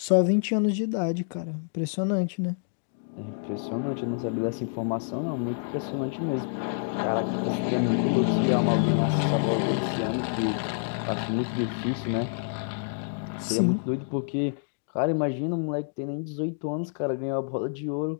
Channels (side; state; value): right; silent; digital silence